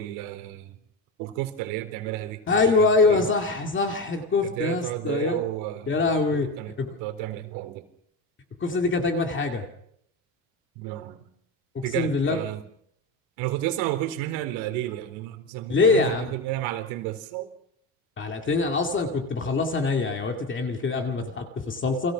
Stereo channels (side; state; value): both; normal; correlation 0.20